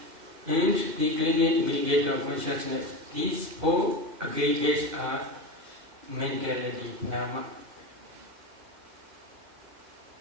and the clinging aggregate of consciousness. These 4 aggregates are mentality, nama.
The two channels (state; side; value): late; left; 2.0 ms